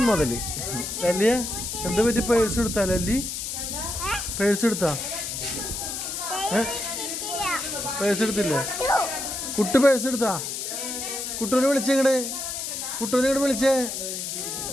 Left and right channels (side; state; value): left; noise; hiss, 4 dB below the sound